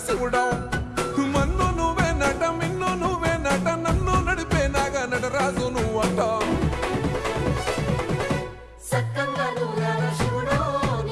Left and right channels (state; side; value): identical; both; correlation 1.00